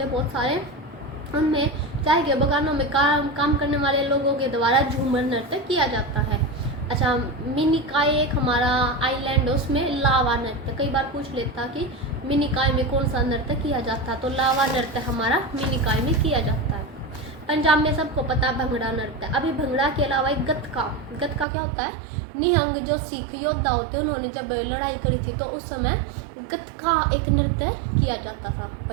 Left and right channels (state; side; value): drops out; left; at 21.5 s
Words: हैं बहुत सारे, उनमें चाय के बागानों में काम करने वाले लोगों के द्वारा झूमर नृत्य किया जाता है। अच्छा, मिनिकाय एक हमारा आइलैंड है, उसमें लावा नृत्य कई बार पूछ लेता कि मिनिकाय में कौन सा नृत्य किया जाता है, तो लावा नृत्य हमारा मिनिकाय में किया जाता है। पंजाब में सबको पता भंगड़ा नृत्य। अभी भंगड़ा के अलावा एक गतका क्या होता है? निहंग जो सिख योद्धा होते हैं, उन्होंने जब लड़ाई करी थी तो उस समय गतका एक नृत्य किया जाता था